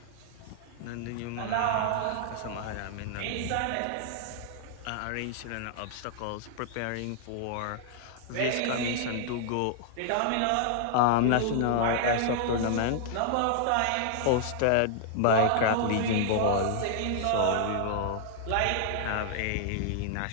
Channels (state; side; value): different; both; correlation 0.00